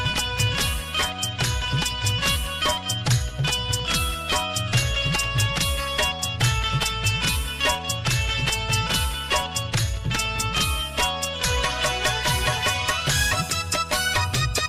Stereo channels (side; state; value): both; identical; correlation 1.00